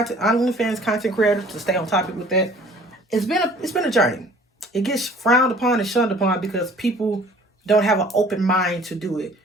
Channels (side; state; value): both; normal; correlation 0.52